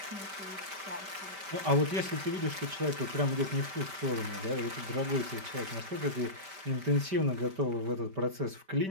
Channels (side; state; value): left; late; 5.1 ms